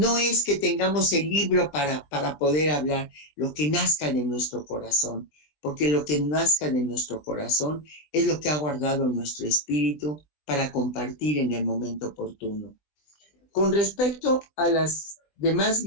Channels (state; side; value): late; right; 20 ms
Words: es que tengamos el libro para poder hablar, lo que nazca de nuestro corazón, porque lo que nazca de nuestro corazón es lo que ha guardado nuestro espíritu para compartir en el momento oportuno. Con respecto a las demás